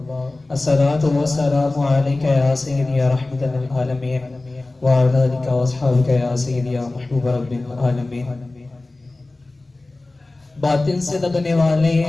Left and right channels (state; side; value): quieter; right; 3.0 dB